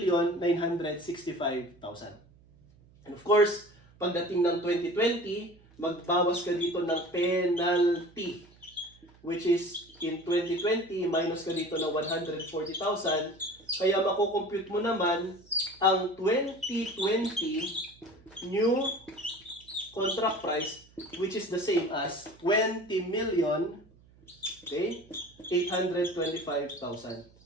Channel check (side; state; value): right; noise; hum, 27 dB below the sound